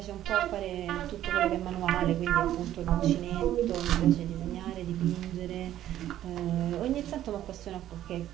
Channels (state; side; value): quieter; left; 12.4 dB